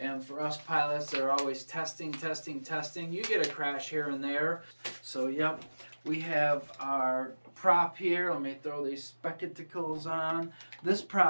for us pilots, they're always testing. You get a crash here and there. So yep, we have our prop here. Let me throw these spectacles on. This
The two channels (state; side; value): inverted; both; correlation -1.00